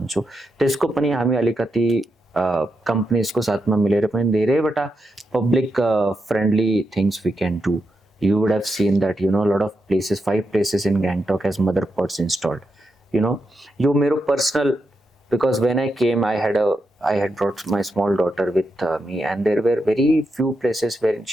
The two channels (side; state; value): both; normal; correlation 0.85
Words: त्यसको पनि हामी अलिकति companies को साथमा मिलेर पनि धेरैवटा public friendly things we can do. You would have seen that a lot of places, 5 places in Gangtok has mother pots installed. यो मेरो personal, because when I came I had brought my small daughter with me, and there were very few places where